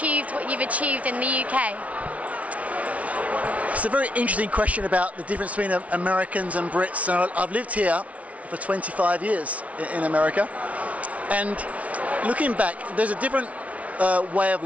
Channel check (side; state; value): left; late; 0.066 ms